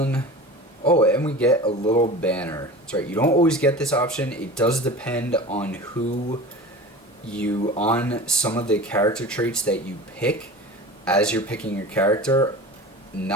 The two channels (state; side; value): normal; both; correlation 0.36